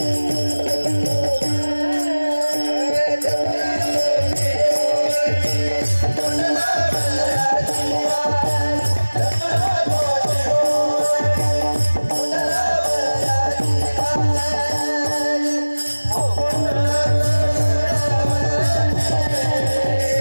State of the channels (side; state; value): both; inverted; correlation -1.00